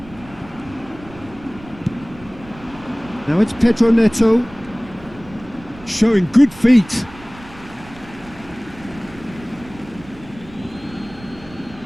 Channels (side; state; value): right; noise; rumble, 20 dB below the sound